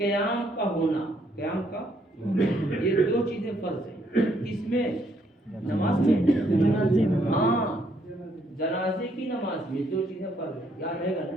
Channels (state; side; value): normal; both; correlation 0.70